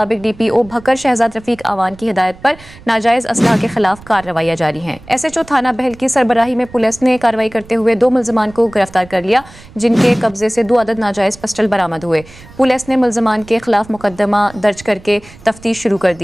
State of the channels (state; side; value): noise; right; rumble, 21 dB below the sound